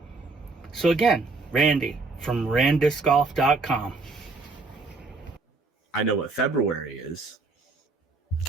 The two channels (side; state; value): left; quieter; 3.7 dB